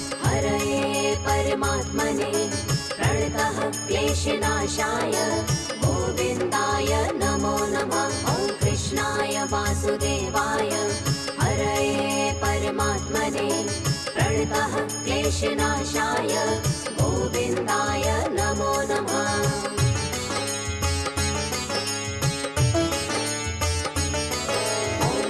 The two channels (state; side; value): identical; both; correlation 1.00